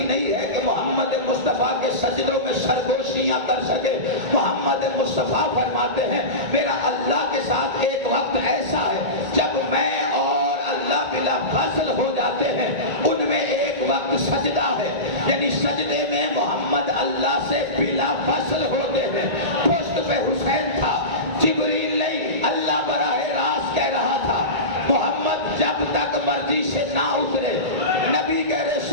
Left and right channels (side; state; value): left; late; 1.8 ms